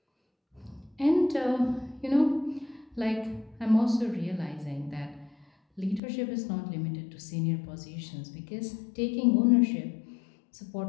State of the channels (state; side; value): drops out; right; at 6.0 s